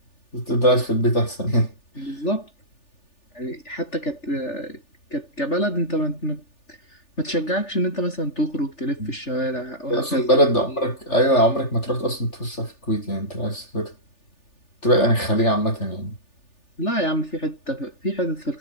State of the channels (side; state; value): right; late; 3.4 ms